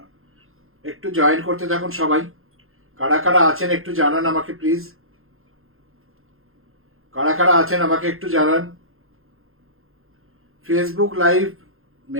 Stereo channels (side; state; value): left; late; 0.61 ms